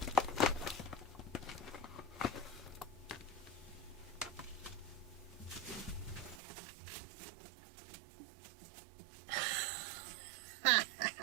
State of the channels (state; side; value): drops out; left; at 6.4 s